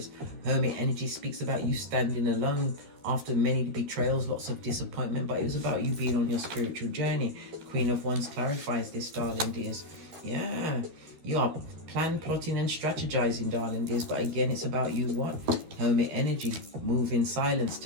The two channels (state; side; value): late; left; 12 ms